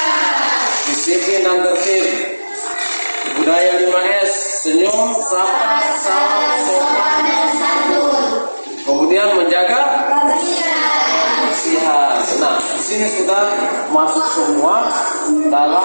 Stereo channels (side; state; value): both; inverted; correlation -1.00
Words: Disiplin dan tertib. Budaya 5S, senyum, sapa, sopan dan santun. Kemudian menjaga kebersihan. Nah, di sini sudah masuk semua